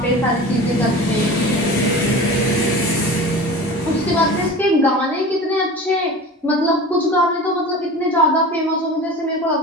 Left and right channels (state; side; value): normal; both; correlation 0.35